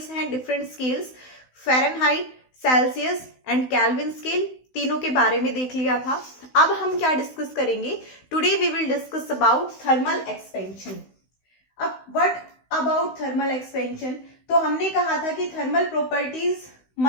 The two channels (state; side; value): late; right; 16 ms